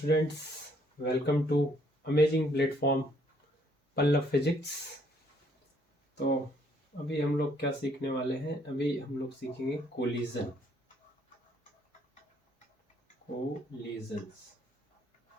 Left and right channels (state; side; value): normal; both; correlation 0.66